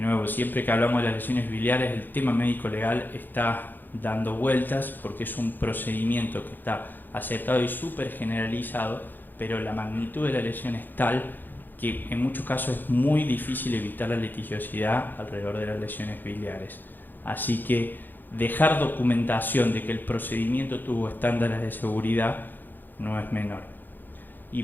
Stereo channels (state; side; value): late; right; 0.089 ms